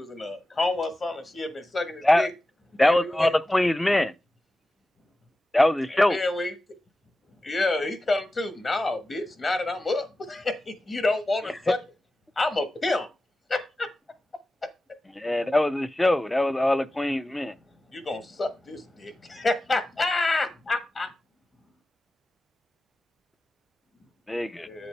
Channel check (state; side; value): normal; both; correlation 0.94